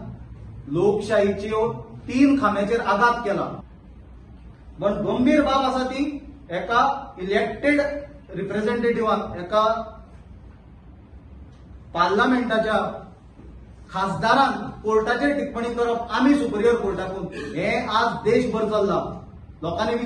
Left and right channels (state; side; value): identical; both; correlation 1.00